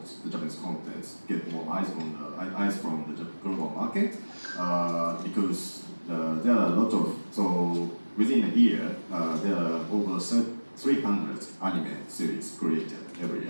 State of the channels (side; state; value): both; inverted; correlation -1.00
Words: the Japanese content, get more eyes from the global market, because there are a lot of, so within a year, there are over 300 anime series created every